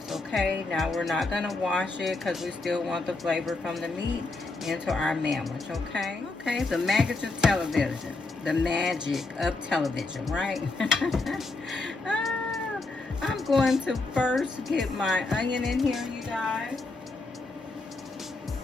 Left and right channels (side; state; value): right; quieter; 3.4 dB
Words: Okay, now we're not going to wash it because we still want the flavor from the meat into our Mandwich. Okay, the magic of television. The magic of television, right? I'm going to first get my onion in here, you guys.